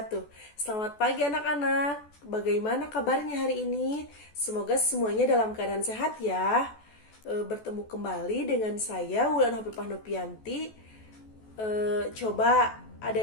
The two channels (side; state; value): right; late; 14 ms